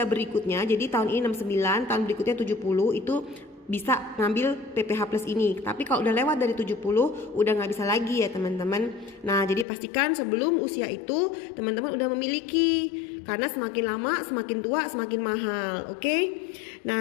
berikutnya. Jadi tahun ini 69, tahun berikutnya 70 itu bisa ngambil PPH Plus ini. Tapi kalau udah lewat dari 70 udah nggak bisa lagi ya teman-teman. Nah, jadi pastikan sebelum usia itu teman-teman udah memiliki. Karena semakin lama semakin tua semakin mahal, oke?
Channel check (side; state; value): right; drops out; at 9.7 s